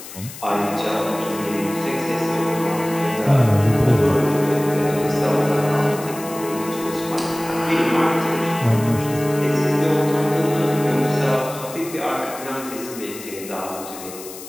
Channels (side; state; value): left; noise; hiss, 14 dB below the sound